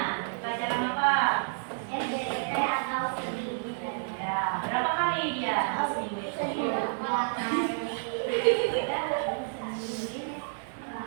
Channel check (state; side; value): silent; left; digital silence